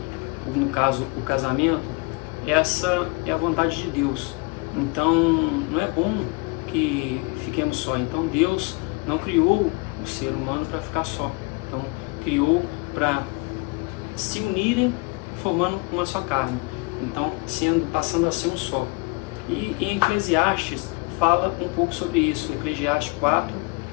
no caso o casamento, essa é a vontade de Deus. Então não é bom que fiquemos só. Então Deus não criou o ser humano para ficar só. Então criou para se unirem formando uma só carne. Então passando a ser um só. E em Eclesiastes fala um pouco sobre isso. Eclesiastes 4,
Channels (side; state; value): right; quieter; 27.9 dB